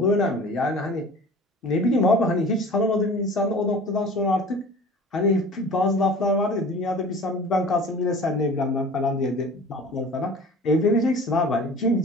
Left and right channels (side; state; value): both; normal; correlation 0.42